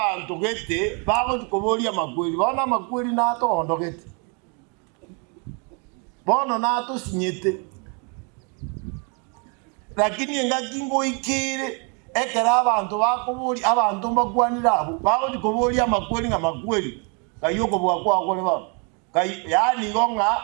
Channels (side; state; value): left; quieter; 35.6 dB